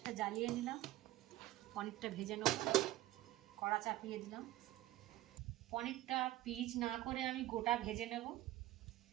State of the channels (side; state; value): left; quieter; 15.8 dB